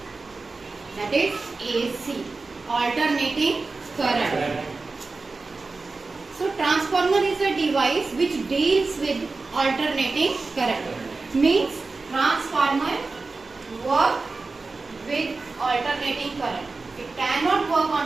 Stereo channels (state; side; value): quieter; left; 3.8 dB